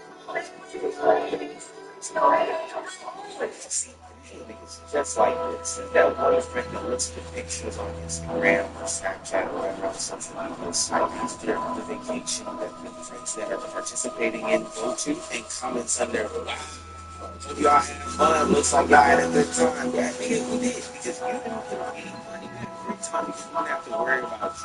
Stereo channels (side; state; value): both; identical; correlation 1.00